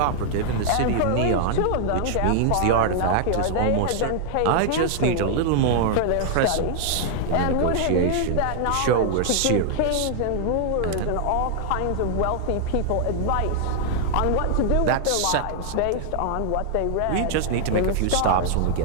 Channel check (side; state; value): both; different; correlation -0.01